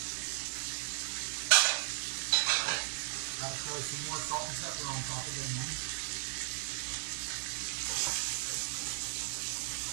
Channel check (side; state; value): left; silent; digital silence